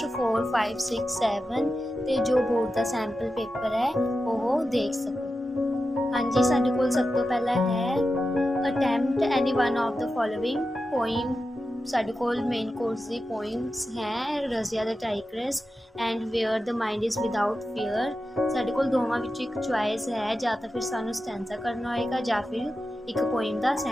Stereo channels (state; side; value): normal; both; correlation 0.91